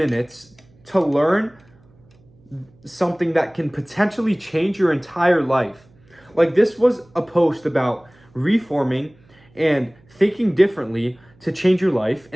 to learn something that can potentially change your entire life? Like, this was a post about reforming and thinking differently to change your life,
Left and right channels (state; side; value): noise; right; hum, 30 dB below the sound